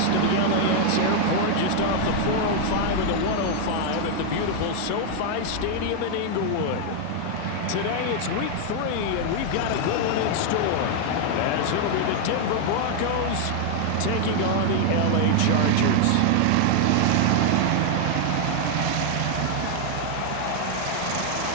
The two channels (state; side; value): different; both; correlation 0.00